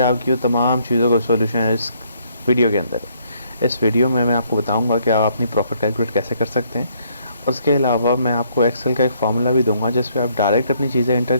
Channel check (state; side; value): inverted; both; correlation -0.69